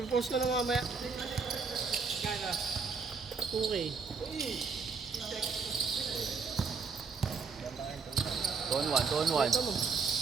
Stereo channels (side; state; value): left; quieter; 5.1 dB